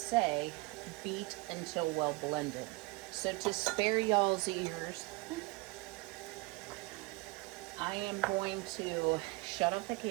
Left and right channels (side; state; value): left; quieter; 24.3 dB